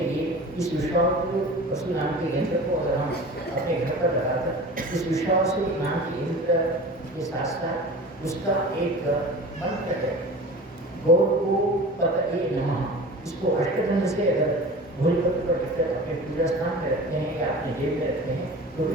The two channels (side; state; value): both; normal; correlation 0.37